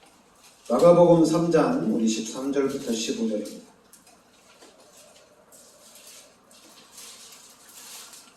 마가복음 3장 우리 13절부터 15절입니다.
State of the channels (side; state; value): both; identical; correlation 1.00